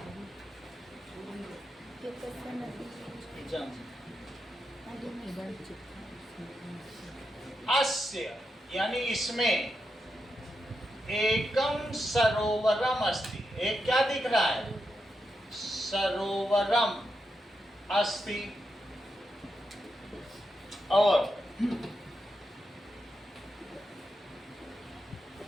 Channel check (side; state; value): both; normal; correlation 0.86